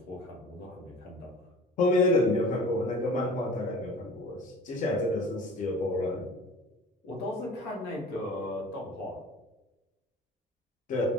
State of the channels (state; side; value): normal; both; correlation 0.43